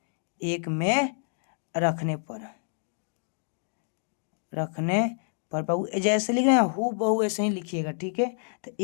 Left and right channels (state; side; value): silent; right; digital silence